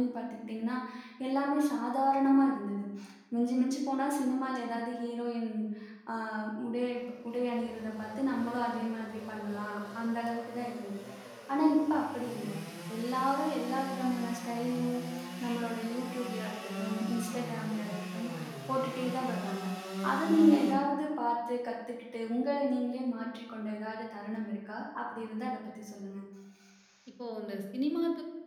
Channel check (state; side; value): identical; both; correlation 1.00